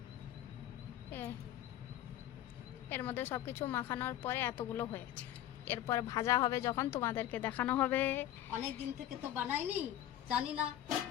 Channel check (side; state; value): right; quieter; 12.5 dB